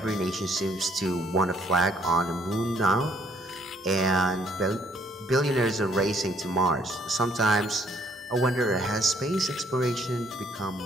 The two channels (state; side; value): normal; both; correlation 0.65